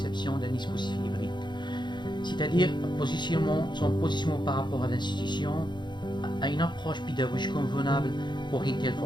d'un dispositif hybride, c'est-à-dire son positionnement par rapport à l'institution, à une approche pédagogique convenable pour une telle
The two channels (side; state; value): right; late; 0.22 ms